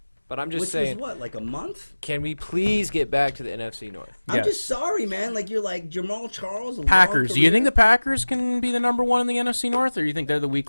But I'm just Which saying, was what, like a month? can we please get back to the NFC North? Yeah. I'm just sorry, man. Like you're like Jamal Charles. a long Packers. Do you career. think the Packers can be the number one in the NFC North, or you think they're the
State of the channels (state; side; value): inverted; both; correlation -1.00